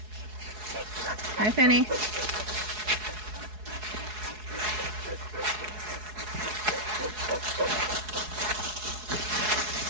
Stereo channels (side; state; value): left; late; 4.7 ms